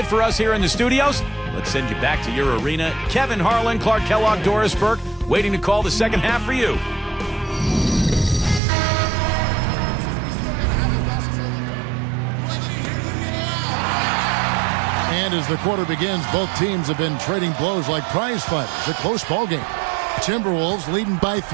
for us here in the studios. Let's send you back to your arena. Kevin Harlan, Clark Kellogg, Doris Burke, waiting to call the second half for you. And as the quarter begins, both teams have been trading blows like prize fighters. A close ball game. Timberwolves leading by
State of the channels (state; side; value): drops out; left; at 8.6 s